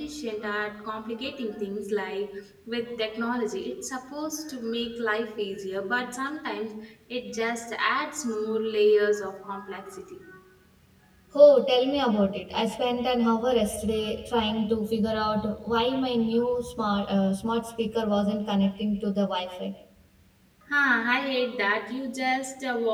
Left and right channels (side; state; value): both; identical; correlation 1.00